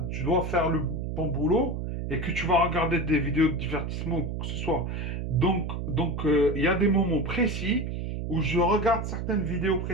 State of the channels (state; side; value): noise; right; hum, 4 dB below the sound